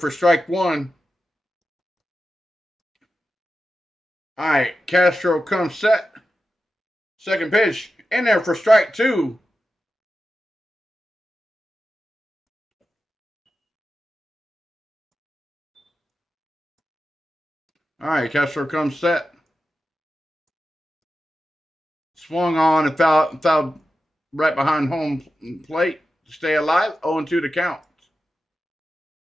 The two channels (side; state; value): both; normal; correlation 0.91